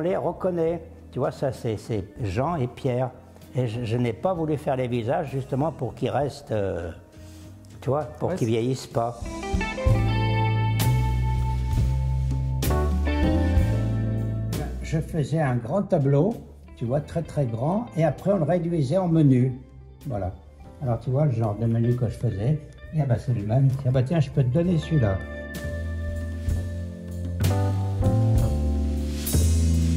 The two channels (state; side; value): identical; both; correlation 1.00